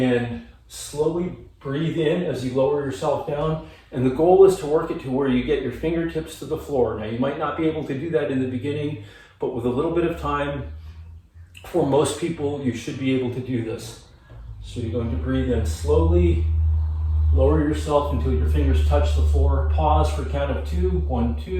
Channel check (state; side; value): identical; both; correlation 1.00